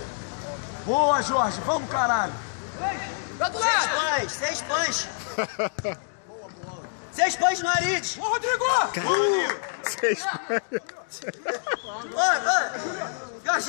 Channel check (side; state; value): right; silent; digital silence